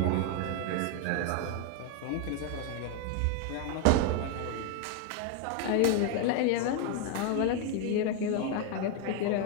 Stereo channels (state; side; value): different; both; correlation 0.01